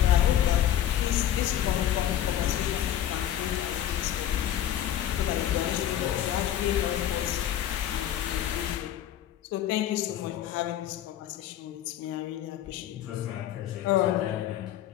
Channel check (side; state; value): right; quieter; 11.5 dB